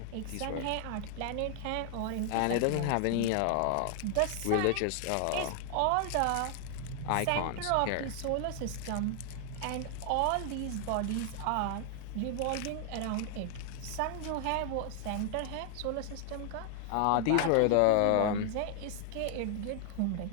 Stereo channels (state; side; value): different; both; correlation 0.00